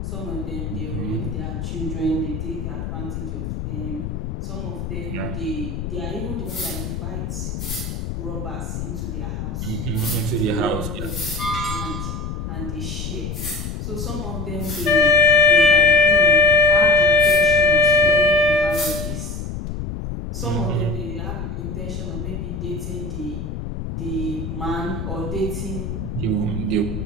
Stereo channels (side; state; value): left; noise; rumble, 5 dB below the sound